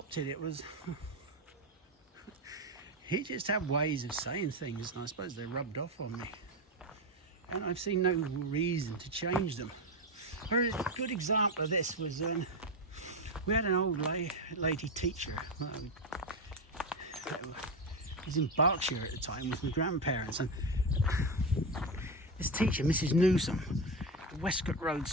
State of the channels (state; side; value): normal; both; correlation 0.14